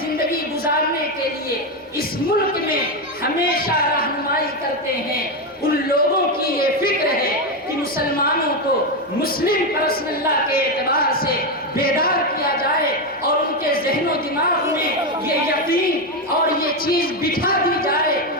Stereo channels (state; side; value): normal; both; correlation 0.09